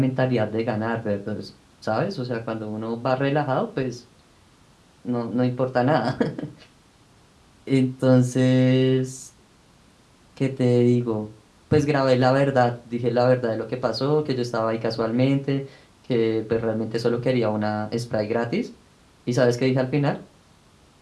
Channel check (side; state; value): both; identical; correlation 1.00